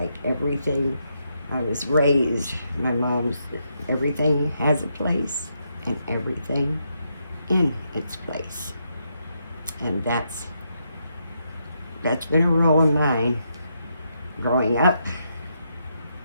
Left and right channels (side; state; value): both; inverted; correlation -0.80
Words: everything. I was raised, my mom's, everything has a place and everything in its place. And that's been a rule of mine growing up,